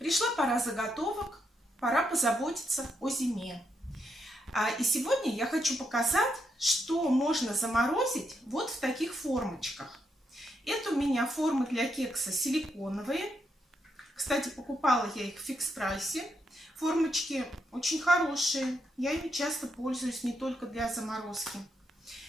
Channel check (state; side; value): normal; both; correlation 0.80